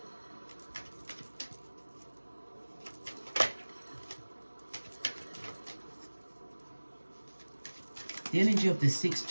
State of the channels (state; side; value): inverted; both; correlation -1.00